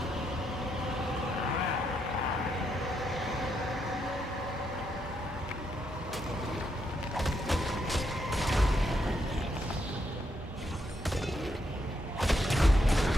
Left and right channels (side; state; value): both; normal; correlation 0.79